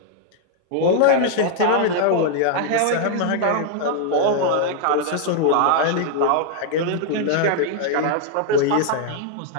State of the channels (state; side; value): different; both; correlation -0.01